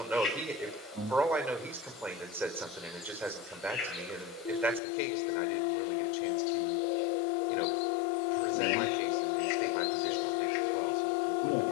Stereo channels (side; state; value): right; drops out; at 4.8 s